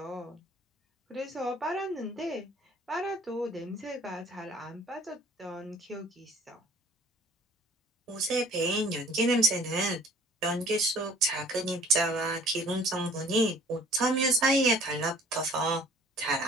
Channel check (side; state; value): both; normal; correlation 0.52